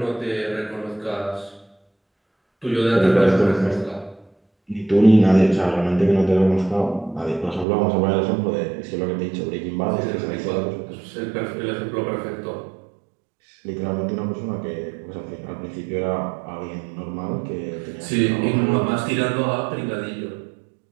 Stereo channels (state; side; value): drops out; left; at 7.7 s